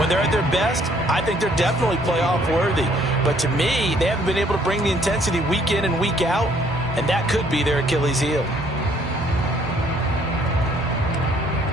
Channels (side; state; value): both; normal; correlation 0.63